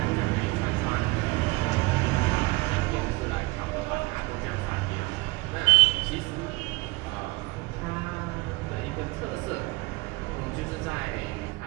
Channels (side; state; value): left; quieter; 23.6 dB